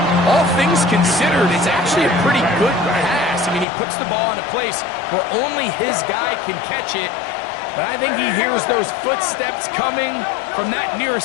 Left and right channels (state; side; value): drops out; right; at 3.7 s